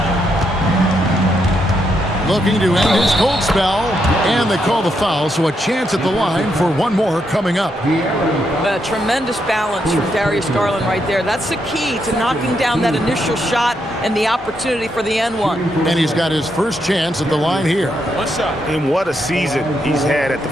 Looking to end his cold spell, and they call the foul, so a chance at the line for one more coming up. A tremendous balance from Darius Garland right there. That's the key to knocking down that initial shot and the opportunity for the N1. And he's got his first chance at the line here. And what a season he's had at the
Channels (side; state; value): both; normal; correlation 0.79